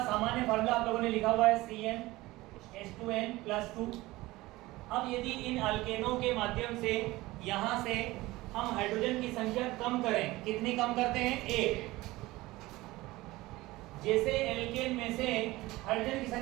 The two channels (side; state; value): left; quieter; 19.3 dB